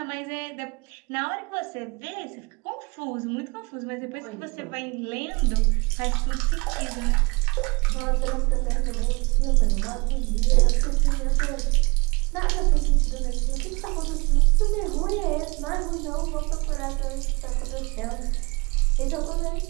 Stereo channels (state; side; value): quieter; left; 27.5 dB